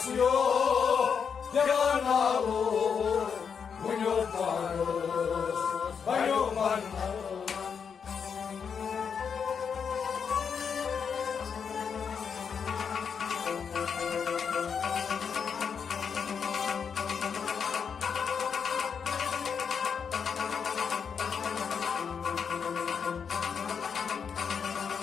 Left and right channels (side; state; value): right; quieter; 6.6 dB